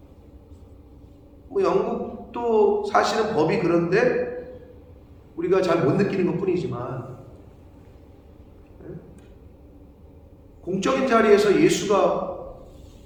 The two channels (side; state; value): both; identical; correlation 1.00